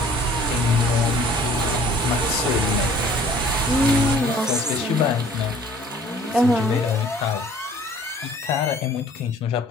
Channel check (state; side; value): normal; both; correlation 0.53